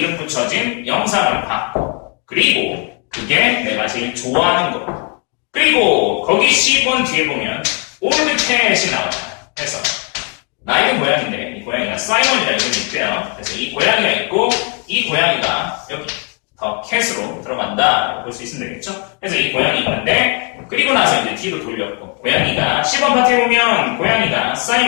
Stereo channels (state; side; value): quieter; right; 35.3 dB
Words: 붙여진 영상을 봤고 그리고 그게 내가 제일 좋아하는 거 그리고 거기 10번 뒤에 보면 올드 캣이 나와요. 그래서 나이도 고양인데 이 고양이가 사이먼이라는 이름이 있대요. 그래서 이 고양이가 있고 이 고양이가 여기 더 캣으로 들어간다라고 볼 수 있으면 되겠죠. 그래서 이 고양이 있는데 그리고 나서 이제 뒤로 돌렸고 고양이가 10번 파트에 보면 고양이가